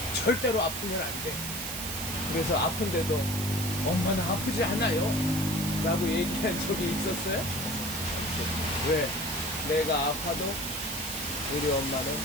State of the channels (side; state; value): right; noise; hiss, 5 dB below the sound